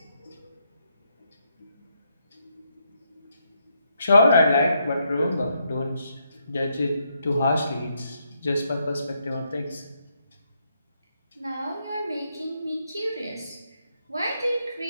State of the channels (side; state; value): both; inverted; correlation -0.78